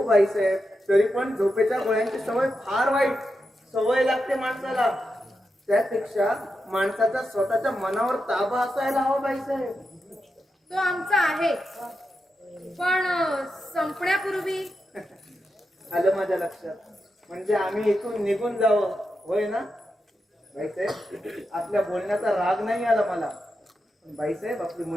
बाई साहेब, तरी पण झोपेच्या गोळ्यांची सवय फार वाईट सवय लागते माणसाला. त्यापेक्षा माणसाचा स्वतःच्या मनावर ताबा असायला हवा बाई साहेब. तो आमचा आहे, पण संपण्यापूर्वी. आलं माझ्या लक्षात. म्हणजे आम्ही इथून निघून जावं, होय ना बाईसाहेब? आपल्या बोलण्याचा राग नाही आला मला, पण बाईसाहेब आपली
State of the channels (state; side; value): normal; both; correlation 0.88